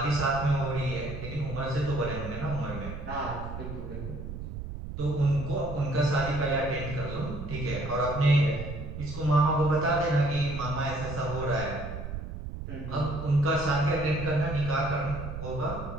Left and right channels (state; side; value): noise; right; rumble, 8 dB below the sound